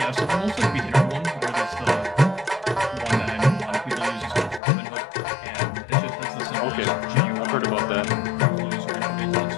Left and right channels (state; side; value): drops out; right; at 4.6 s